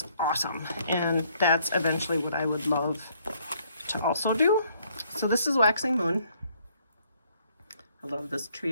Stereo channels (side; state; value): both; inverted; correlation -0.66